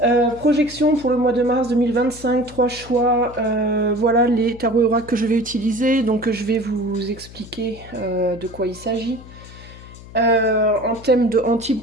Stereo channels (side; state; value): left; noise; hum, 18 dB below the sound